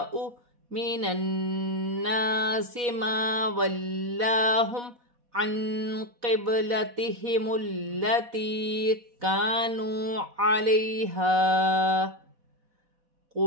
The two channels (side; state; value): left; late; 4.1 ms